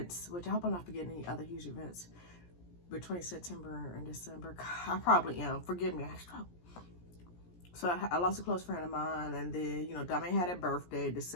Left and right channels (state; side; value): late; right; 17 ms